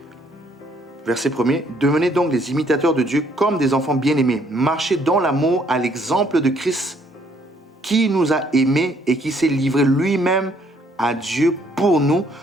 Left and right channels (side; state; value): both; normal; correlation 0.66